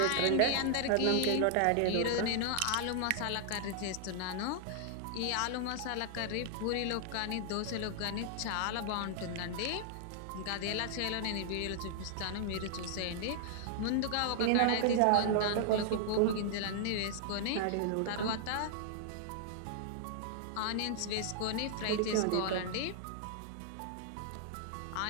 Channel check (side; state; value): both; different; correlation -0.01